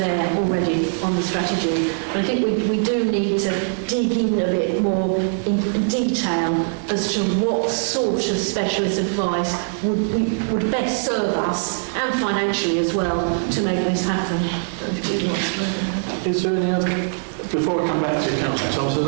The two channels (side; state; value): left; silent; 59 dB below the other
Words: already on the strategy. But I think we do need to dig in a bit more in detail as to what sort of specialist advice would best serve us, and financially as well, to make this happen. Is there any other, before I come back to council,